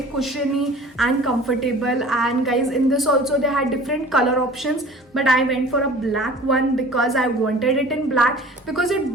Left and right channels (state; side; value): normal; both; correlation 0.44